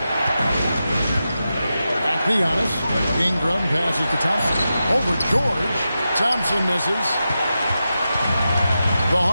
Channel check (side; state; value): both; inverted; correlation -0.90